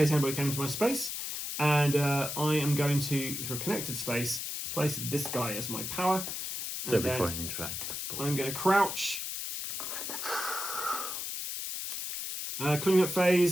anybody came into my space, and I am going to, through a connected space, place this guy as my power. So And before I then interact. I'm going to crouch. Clean up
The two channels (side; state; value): left; noise; hiss, 4 dB below the sound